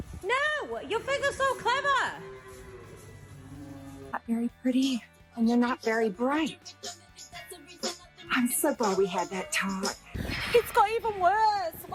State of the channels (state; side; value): identical; both; correlation 1.00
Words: No! Your finger's so clever! Not very pretty, and you're not very bright. I'm so glad we had that talk. It's got even worse!